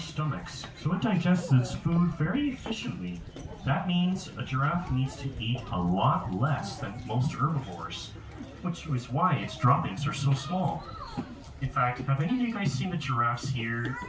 so it digests its food very efficiently. That means a giraffe needs to eat a lot less than most herbivores, which is why its droppings are so small. In fact, have any of you guys seen the giraffes here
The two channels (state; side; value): identical; both; correlation 1.00